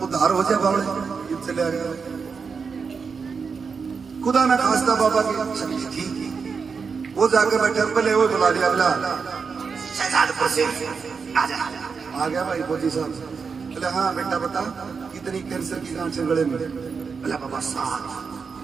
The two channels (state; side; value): quieter; left; 5.4 dB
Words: उद्धार हो जाए बाबा, चले आ गया। खुदा ना खास्ता बाबा की शक्ति थी, वो जाकर बैठे, पहले वो बुला लिया, बोला शहजादपुर से आ गया भाई फौजी साहब। बोले हाँ बेटा बता कितनी कैंसर की गांठ है गले में? बोला बाबा 7।